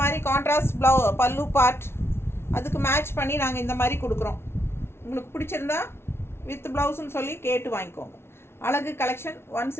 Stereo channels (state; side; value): late; right; 0.12 ms